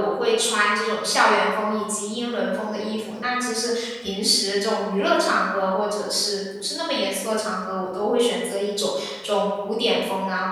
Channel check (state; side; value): identical; both; correlation 1.00